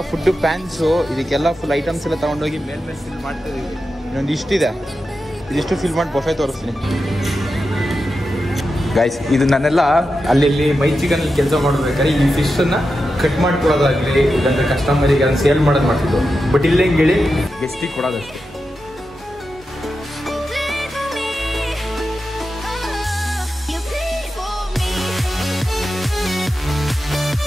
ಫುಡ್ ಪ್ಯಾನ್ಸು, ಇದಕ್ಕೆಲ್ಲ ಫುಲ್ ಐಟಮ್ಸ್ ಎಲ್ಲ ತಗೊಂಡೋಗಿ ಮೇಲ್ಮೇಲೆ ಫಿಲ್ ಮಾಡ್ತಾ ಇದೀವಿ. ಇನ್ನೊಂದು ಇಷ್ಟಿದೆ, ಇದಿಷ್ಟು ಫಿಲ್ ಮಾಡಿ ಬಫೆ ತೋರಿಸ್ತೀನಿ ಗೈಸ್. ಇದು ನಾನೆಲ್ಲ ಅಲ್ಲಿ ಮೈ ಚಿಕನ್ ಕೆಲಸ ಮಾಡ್ಬೇಕಾದ್ರೆ ಈ ಫಿಶನ್ನು ಕಟ್ ಮಾಡ್ಕೊಡೋದಾಗಲಿ, ಇಲ್ಲಾಂದ್ರೆ ಕಸ್ಟಮರಿಗೆ ಅದನ್ನು ಸೇಲ್ ಮಾಡೋದು ಮಾಡ್ತಿದ್ದು. ಬಟ್ ಇಲ್ಲೇ ಹೇಳಿ ಗೆಸ್ಟಿಗೆ ಕೊಡೋದಷ್ಟೇ.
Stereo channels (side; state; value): both; normal; correlation 0.90